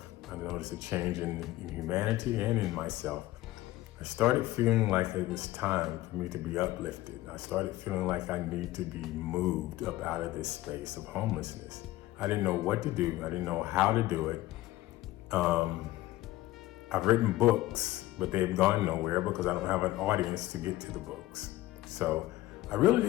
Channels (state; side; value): quieter; right; 16.6 dB